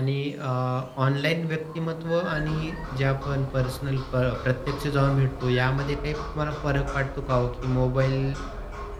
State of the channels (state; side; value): identical; both; correlation 1.00